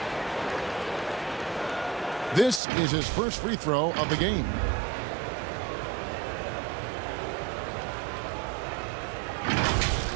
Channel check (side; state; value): left; drops out; at 2.6 s